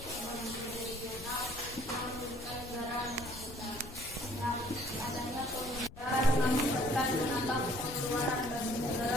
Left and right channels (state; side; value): noise; left; rumble, 16 dB below the sound